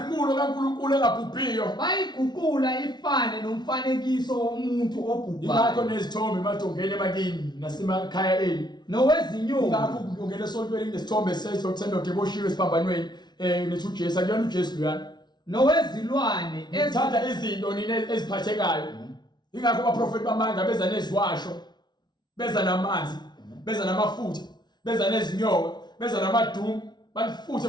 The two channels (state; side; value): late; right; 0.20 ms